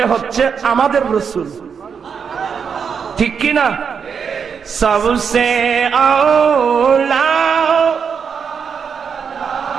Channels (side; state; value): left; quieter; 6.5 dB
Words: হচ্ছে আমাদের রাসূল, ঠিক কি না? सबसे औला